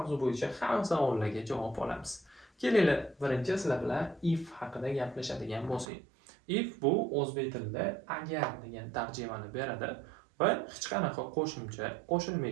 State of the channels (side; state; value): left; drops out; at 5.9 s